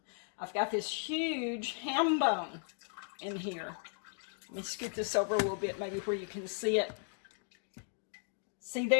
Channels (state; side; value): silent; right; 54 dB below the other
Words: I've got this huge ham bone in here. Let me scoot this over a little bit, maybe where you can see it. See